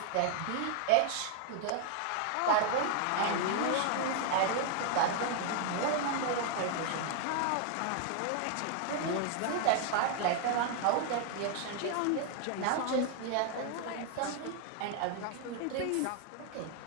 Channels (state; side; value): different; both; correlation 0.00